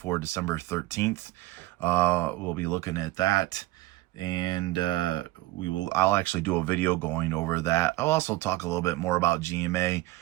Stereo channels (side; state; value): left; quieter; 18.6 dB